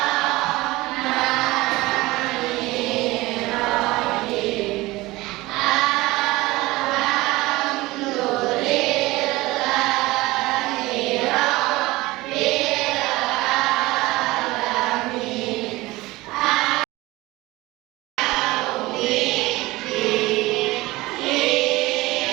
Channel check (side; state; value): left; quieter; 20.0 dB